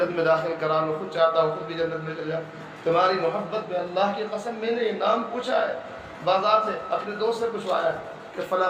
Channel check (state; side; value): identical; both; correlation 1.00